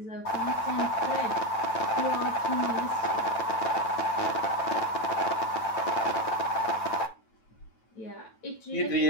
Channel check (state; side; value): late; right; 9.1 ms